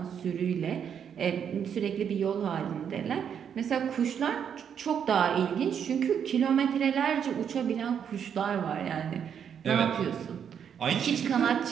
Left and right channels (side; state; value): left; quieter; 8.0 dB